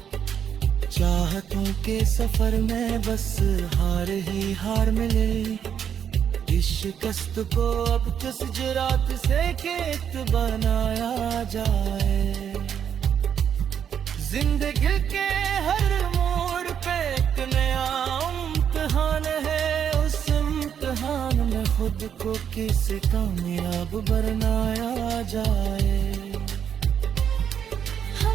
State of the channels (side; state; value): left; quieter; 8.4 dB